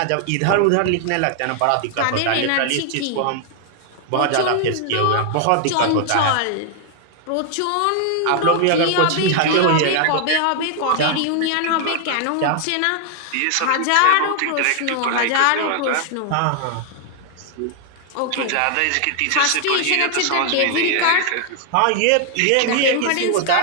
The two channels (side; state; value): both; different; correlation 0.00